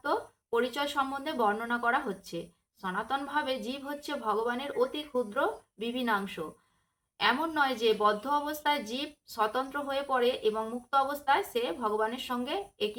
পরিচয় সম্বন্ধে বর্ণনা করা হচ্ছে। সনাতনভাবে জীব হচ্ছে ভগবানের অতি ক্ষুদ্র বিভিন্নাংশ। এমন নয় যে বদ্ধ অবস্থায় জীব স্বতন্ত্র হয়ে পড়ে এবং মুক্ত অবস্থায় সে ভগবানের সঙ্গে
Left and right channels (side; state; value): both; identical; correlation 1.00